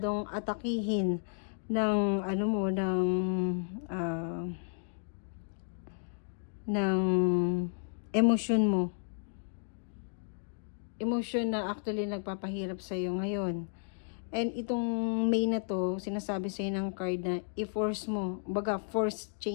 atakihin ng ano mo, ng emosyon mo. Emosyon na actually nagpapahirap sa iyo ngayon. And itong May na to, sinasabi sa ng card na i-force mo, baga force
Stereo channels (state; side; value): silent; right; digital silence